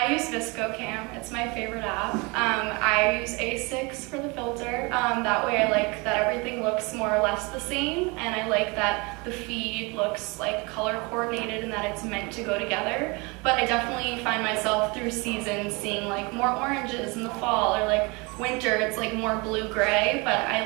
use ViscoCam. It's my favorite app. I use A6 for the filter. That way I like that everything looks more or less the same, and I like that the feed looks like color coordinated and that it's meant to go together. But I definitely find myself through seasons seeing like more oranges in the fall, or like winter it's like more blue-gray, but I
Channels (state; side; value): quieter; left; 27.7 dB